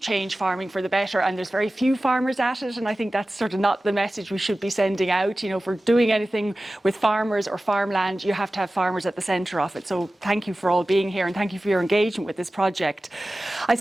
farming for the better. And there's very few farmers at it, and I think that's sort of not the message we should be sending out. For doing anything with farmers or farmland, you have to have farmers at the centre of it. So thank you for all being here, and thank you for your engagement with this project. I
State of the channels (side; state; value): both; normal; correlation 0.96